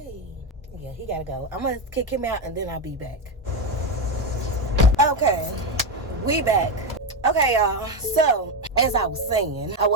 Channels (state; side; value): normal; both; correlation 0.12